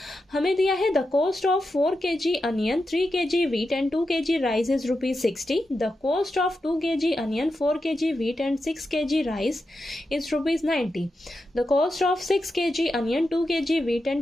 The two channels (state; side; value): normal; both; correlation 0.89